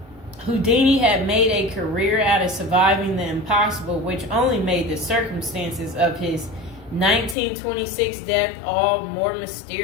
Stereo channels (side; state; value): right; drops out; at 7.4 s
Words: Houdini had made a career out of surviving the impossible, which only made the circumstances of his 1926 death all more